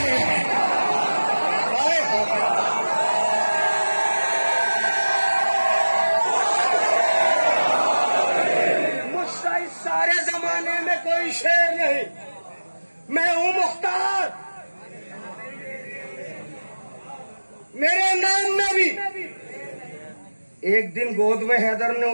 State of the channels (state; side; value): inverted; both; correlation -1.00